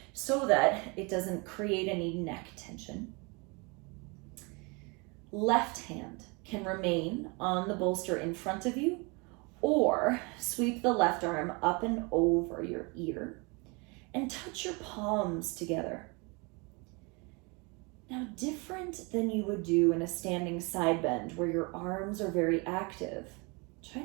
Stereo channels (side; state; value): left; quieter; 29.6 dB